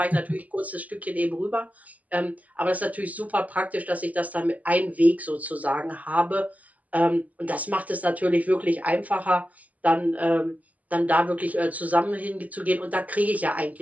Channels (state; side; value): late; left; 0.076 ms